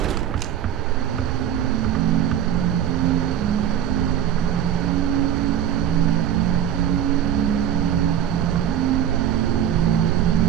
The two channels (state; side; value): quieter; left; 10.3 dB